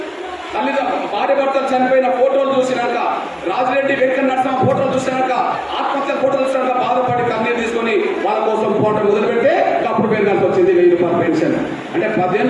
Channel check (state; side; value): identical; both; correlation 1.00